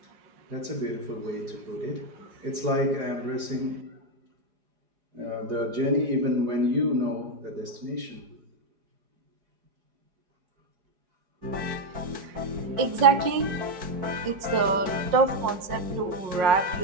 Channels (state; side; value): late; left; 5.5 ms